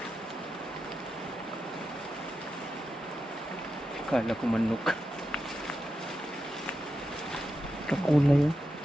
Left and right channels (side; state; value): both; normal; correlation 0.88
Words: Kala ko manok. Kakulay oh.